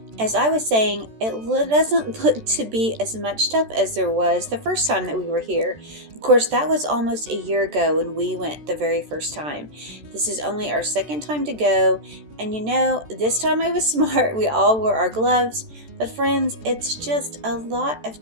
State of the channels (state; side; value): late; left; 14 ms